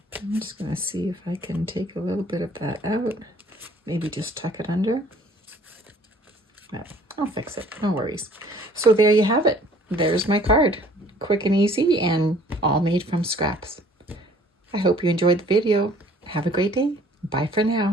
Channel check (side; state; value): both; normal; correlation 0.55